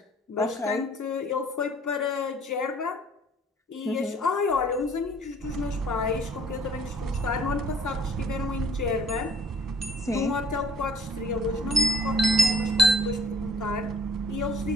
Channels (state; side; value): normal; both; correlation 0.54